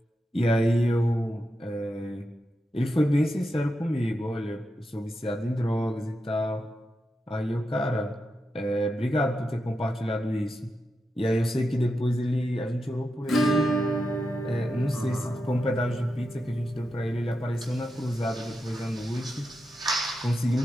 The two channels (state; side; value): normal; both; correlation 0.88